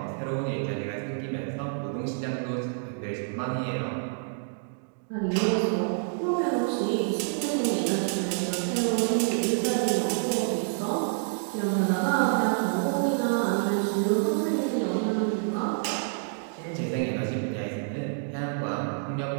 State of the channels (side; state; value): left; silent; digital silence